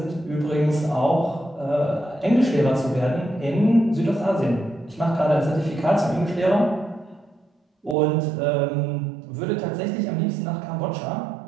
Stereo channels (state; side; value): drops out; left; at 8.0 s